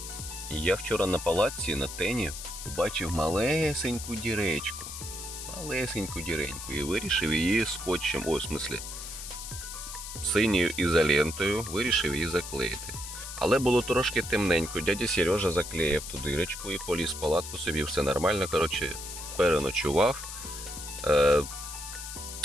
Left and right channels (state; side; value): noise; left; hiss, 9 dB below the sound